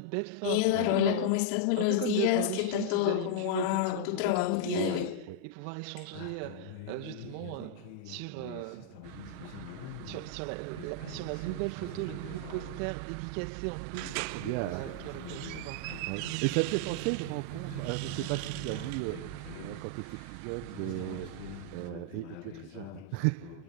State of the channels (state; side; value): different; both; correlation -0.01